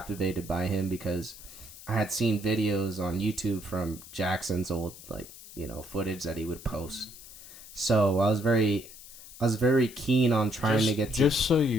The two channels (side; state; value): left; noise; hiss, 17 dB below the sound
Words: by him because I had seen videos on YouTube from Jackson's old, like, footage that he would post. So I was very keen on trying to get to... Just so